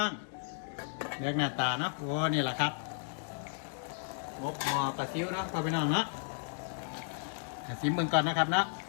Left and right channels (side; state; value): right; silent; 55 dB below the other